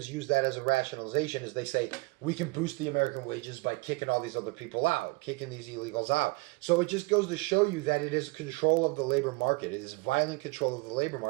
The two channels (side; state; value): left; quieter; 25.6 dB